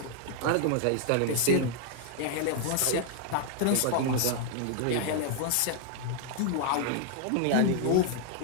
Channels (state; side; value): different; both; correlation 0.00